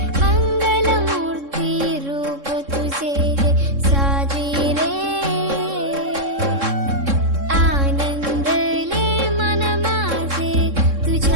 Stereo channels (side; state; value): left; late; 3.6 ms